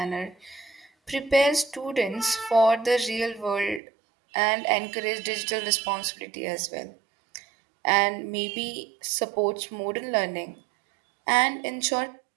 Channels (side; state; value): left; drops out; at 3.8 s